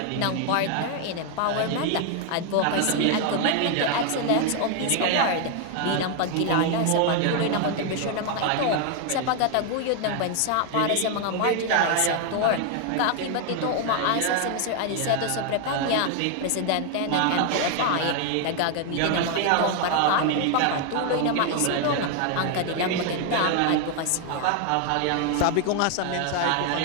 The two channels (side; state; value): both; different; correlation 0.00